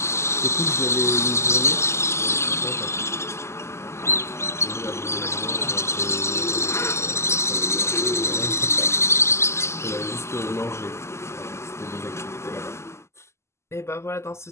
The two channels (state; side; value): late; right; 0.13 ms